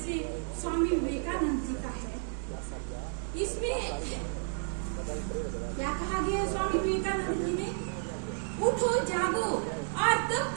स्वामी विवेकानंद जी का है। इसमें क्या कहा गया है स्वामी विवेकानंद जी ने? उठो जागो और तब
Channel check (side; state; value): left; silent; 57 dB below the other